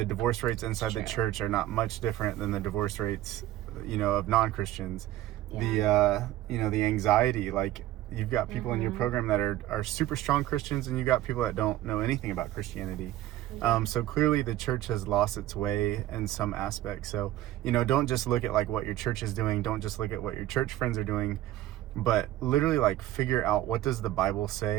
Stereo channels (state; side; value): quieter; left; 14.2 dB